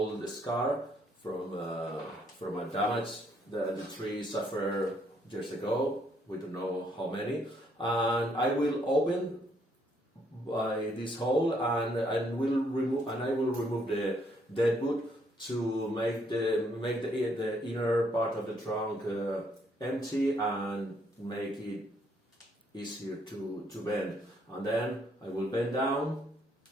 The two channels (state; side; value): normal; both; correlation 0.70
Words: scar from a damage that the tree suffered years ago. We don't know how many, and I will open by this hole and I will remove the dead wood to make the inner part of the trunk empty and make it easier to bend. And then I will bend down